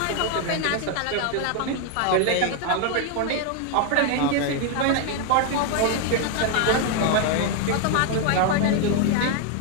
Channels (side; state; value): both; different; correlation 0.01